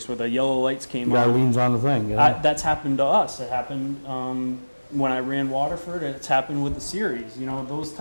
where the yellow lights came on. Guy leans on the thing. Yeah. That's happened to us. It happened when I ran Waterford. It's happened with the series. Those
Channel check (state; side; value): inverted; both; correlation -1.00